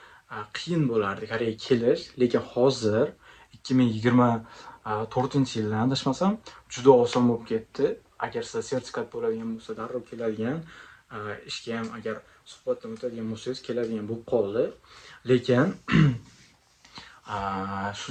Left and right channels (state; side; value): identical; both; correlation 1.00